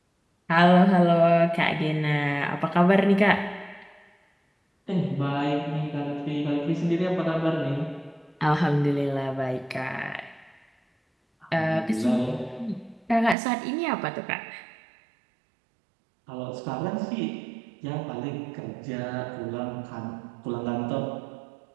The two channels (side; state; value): left; drops out; at 13.4 s